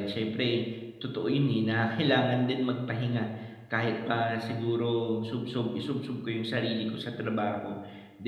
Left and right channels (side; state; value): both; identical; correlation 1.00